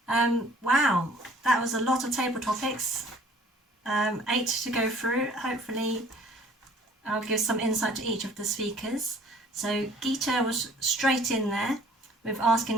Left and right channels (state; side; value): normal; both; correlation 0.53